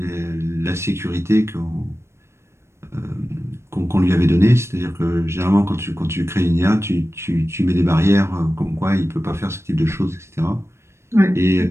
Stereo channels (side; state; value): left; late; 0.13 ms